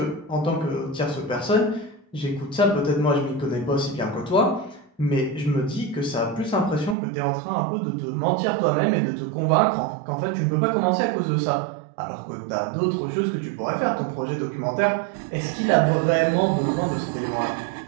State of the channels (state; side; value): drops out; left; at 7.0 s